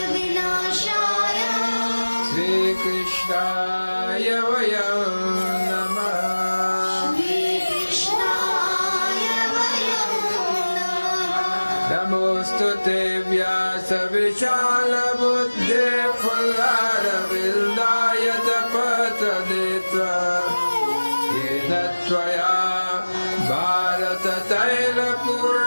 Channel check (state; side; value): inverted; both; correlation -1.00